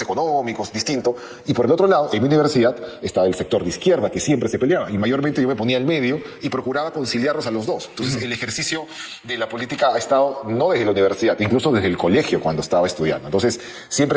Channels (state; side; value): identical; both; correlation 1.00